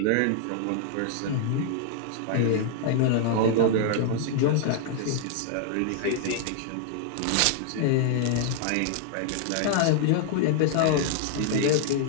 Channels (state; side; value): different; both; correlation -0.01